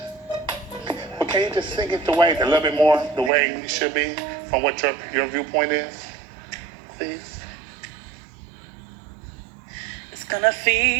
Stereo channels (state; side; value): drops out; left; at 3.3 s